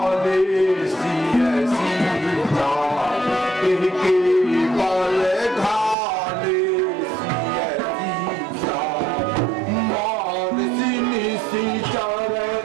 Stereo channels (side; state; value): left; drops out; at 6.0 s